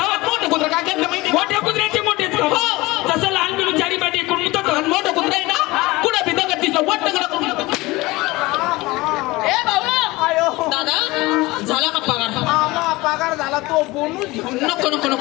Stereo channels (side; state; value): right; quieter; 21.1 dB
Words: मोठं कुत्र काय करतं माहिती? मोठ्या कुत्र्याचे मोठेच तसं लहान पिल्लू चारी पाय टेकून जातो. मोठं कुत्र आहे ना कुठं बी दगड दिसलं वट्ट करून. ए भाऊ दादा झाला का पगार? पगार झाला तो बोनस. नको नको